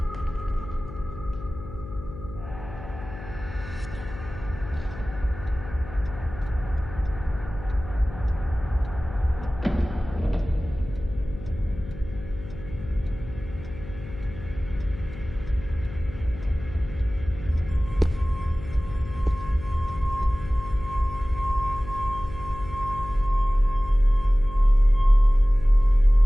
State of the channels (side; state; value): left; noise; hum, 13 dB below the sound